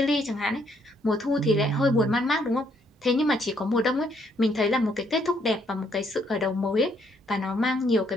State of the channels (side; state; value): both; normal; correlation 0.70